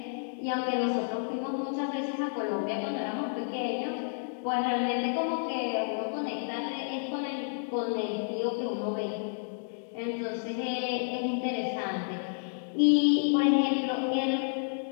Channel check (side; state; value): right; silent; digital silence